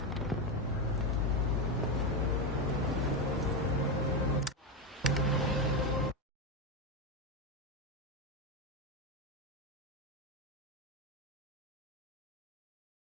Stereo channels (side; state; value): both; normal; correlation 0.11